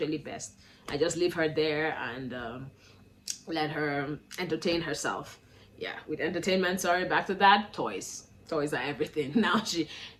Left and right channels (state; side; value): identical; both; correlation 1.00